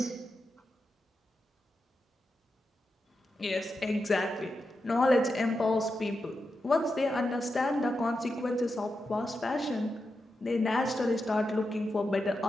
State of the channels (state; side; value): normal; both; correlation 0.88